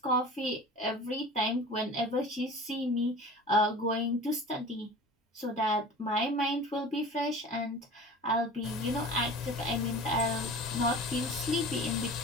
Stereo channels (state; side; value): normal; both; correlation 0.39